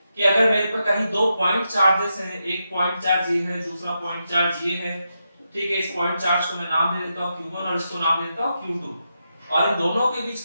कि अगर मेरे पर कहीं दो पॉइंट चार्जेस हैं, एक पॉइंट चार्ज ये है, दूसरा पॉइंट चार्ज ये है। ठीक है, इस पॉइंट चार्ज को मैं नाम दे देता हूं Q1 और इसको नाम दे देता हूं Q2, और इन दोनों के बीच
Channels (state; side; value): inverted; both; correlation -0.86